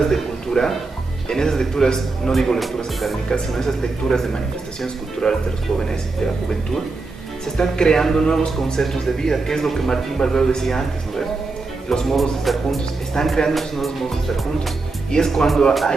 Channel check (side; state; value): left; quieter; 3.7 dB